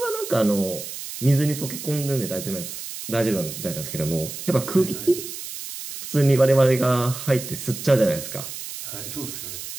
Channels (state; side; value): noise; right; hiss, 9 dB below the sound